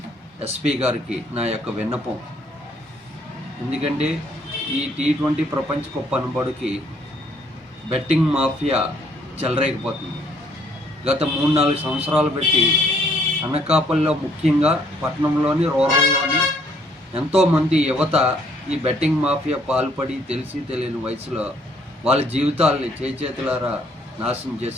ఎస్పీ గారికి నా యొక్క విన్నపం. ఎందుకంటే ఈ T20 ప్రపంచ కప్ అనబడికి బెట్టింగ్ మాఫియా చెలరేగిపోతుంది. గత 3-4 సంవత్సరాలు పెట్టి అనకాపల్లిలో ముఖ్యంగా పట్టణంలోని రూరల్లోని ఎంతోమంది యువత ఈ బెట్టింగ్ మాఫియా పాల్పడి తెలిసి తెలియని వయసులో వాళ్ళ జీవితాలని చేతులారా నాశనం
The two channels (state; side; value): normal; both; correlation 0.65